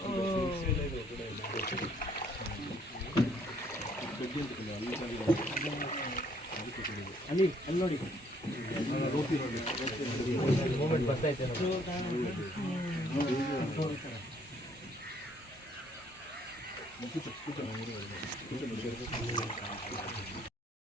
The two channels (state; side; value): normal; both; correlation 0.64